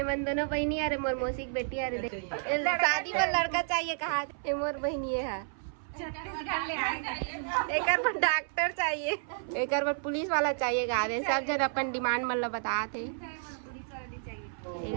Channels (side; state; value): left; silent; 57 dB below the other